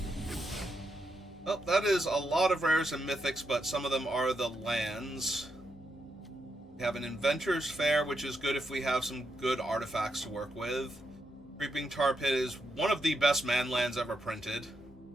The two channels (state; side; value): normal; both; correlation 0.82